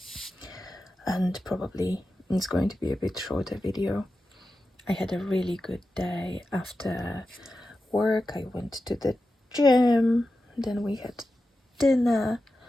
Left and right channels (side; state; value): both; normal; correlation 0.92